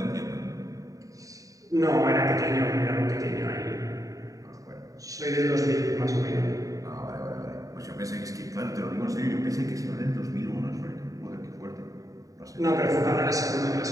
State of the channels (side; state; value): left; late; 0.16 ms